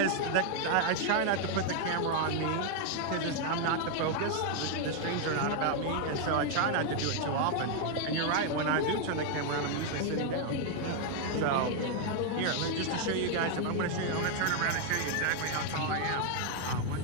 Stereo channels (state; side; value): different; both; correlation 0.01